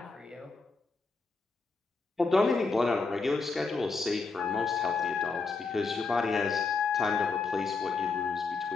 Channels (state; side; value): quieter; right; 4.3 dB